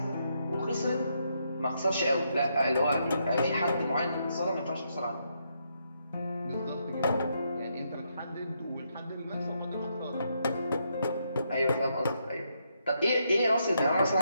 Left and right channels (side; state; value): both; inverted; correlation -0.78